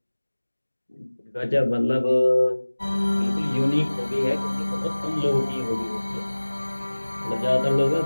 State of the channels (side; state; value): both; inverted; correlation -1.00